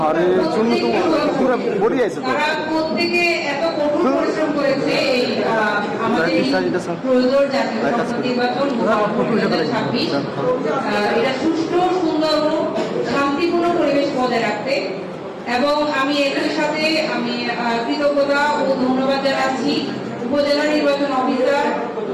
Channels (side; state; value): both; identical; correlation 1.00